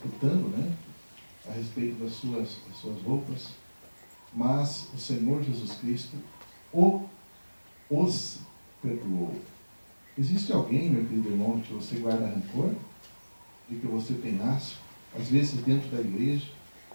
né, a respeito das suas roupas, mas o Senhor Jesus Cristo os perdoou. Existe alguém, meu querido irmão, que você guarda rancor? De que você tem asco? Às vezes dentro da igreja,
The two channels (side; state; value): both; inverted; correlation -1.00